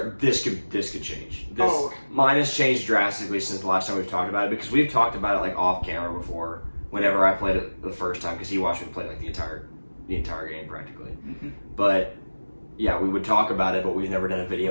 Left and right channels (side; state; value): both; inverted; correlation -1.00